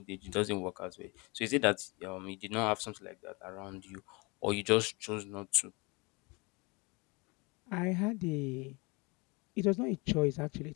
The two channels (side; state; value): right; quieter; 28.3 dB